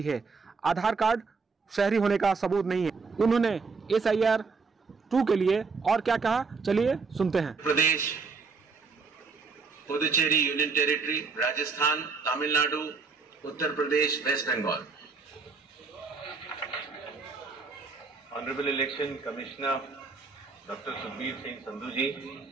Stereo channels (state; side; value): quieter; left; 4.6 dB